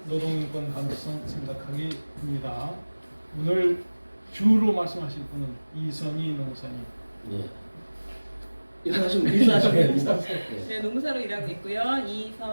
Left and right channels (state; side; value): inverted; both; correlation -1.00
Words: 노동인권 감수성 생각하기입니다. 오늘 주로 말씀하실 분은 이선희 농사님. 예. 인사하시면 네, 농사로 일하고 있고요.